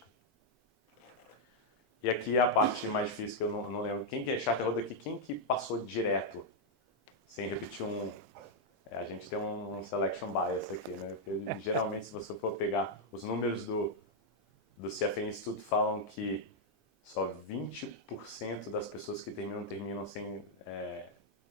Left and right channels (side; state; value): both; normal; correlation -0.02